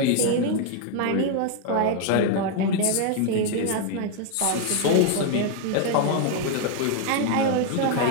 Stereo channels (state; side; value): different; both; correlation 0.00